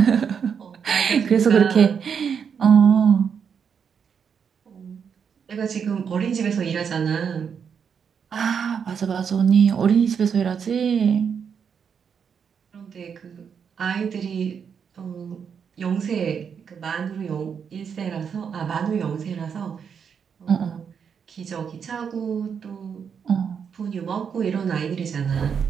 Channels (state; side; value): quieter; left; 7.0 dB